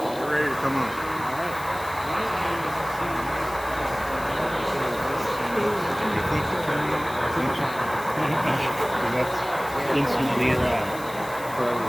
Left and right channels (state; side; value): noise; left; hiss, 17 dB below the sound